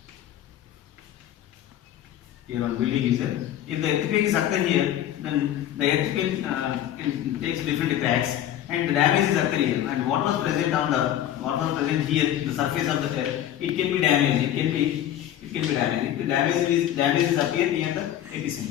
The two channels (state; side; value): quieter; right; 11.6 dB